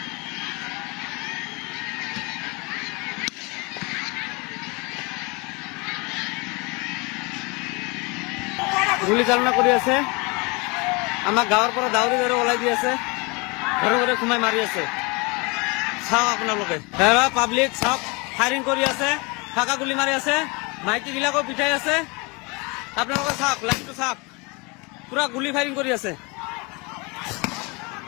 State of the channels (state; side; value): quieter; right; 28.4 dB